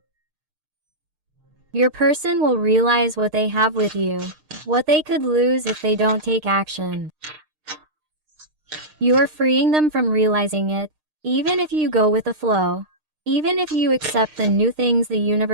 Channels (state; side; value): late; left; 6.6 ms